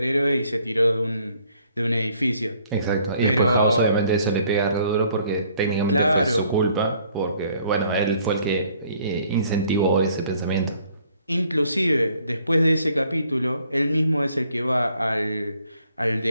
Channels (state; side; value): inverted; both; correlation -0.63